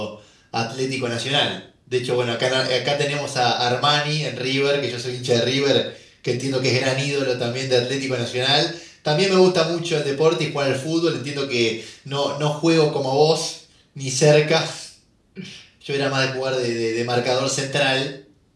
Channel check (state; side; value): identical; both; correlation 1.00